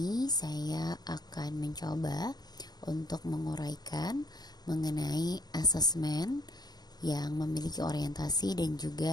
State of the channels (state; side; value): late; right; 0.19 ms